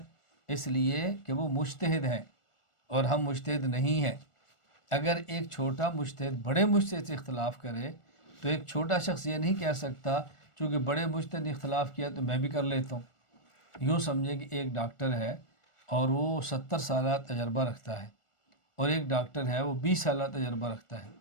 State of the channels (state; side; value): late; right; 1.4 ms